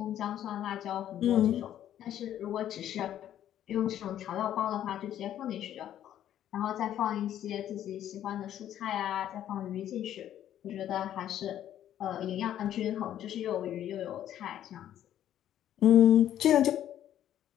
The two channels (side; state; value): right; quieter; 11.3 dB